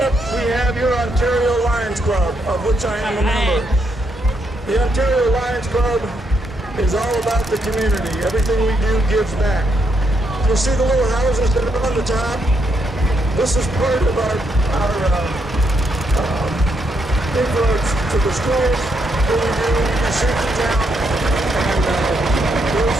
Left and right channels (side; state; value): both; normal; correlation 0.77